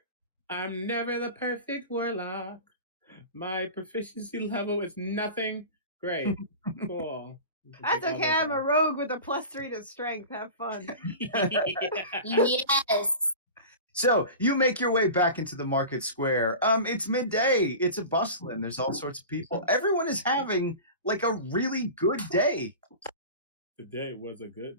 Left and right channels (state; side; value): inverted; both; correlation -0.33